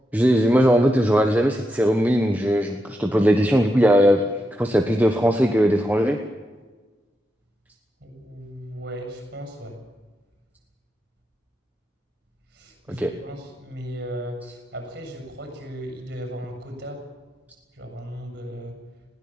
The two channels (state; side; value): normal; both; correlation 0.85